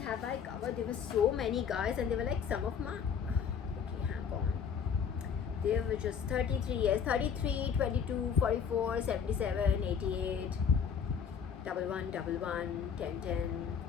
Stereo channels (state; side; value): quieter; right; 7.1 dB